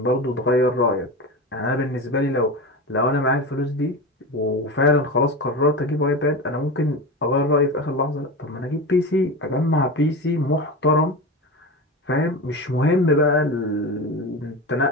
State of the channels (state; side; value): normal; both; correlation 0.25